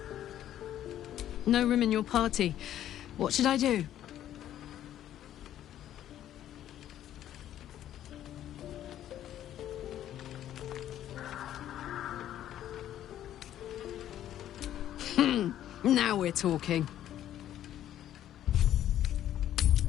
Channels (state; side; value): quieter; right; 11.7 dB